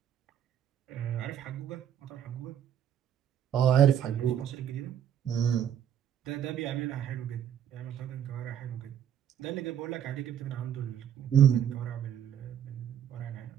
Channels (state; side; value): quieter; left; 9.6 dB